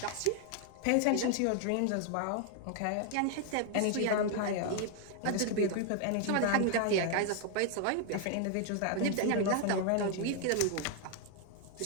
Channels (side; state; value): both; different; correlation 0.00